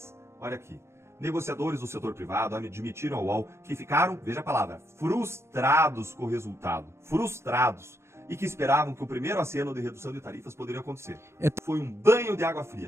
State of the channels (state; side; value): late; left; 0.13 ms